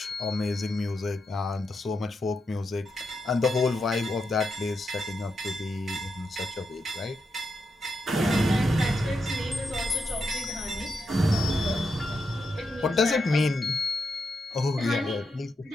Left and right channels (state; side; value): normal; both; correlation 0.84